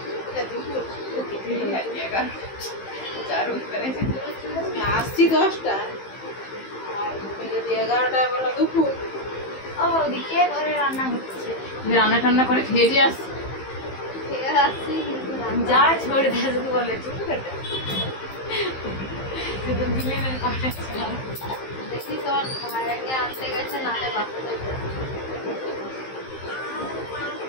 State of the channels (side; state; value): right; late; 15 ms